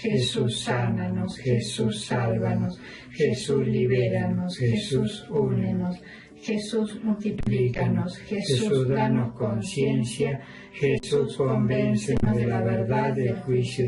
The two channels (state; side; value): identical; both; correlation 1.00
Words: sánanos. Jesús, sálvanos. Jesús, libéranos. Jesús, únenos. Jesús, multiplícanos. Jesús, danos conciencia. Jesús, convéncenos de la verdad, del juicio